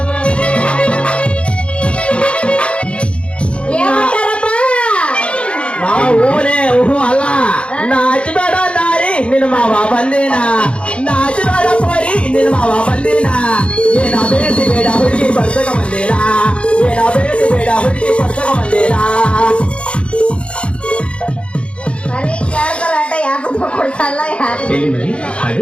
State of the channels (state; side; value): late; right; 0.059 ms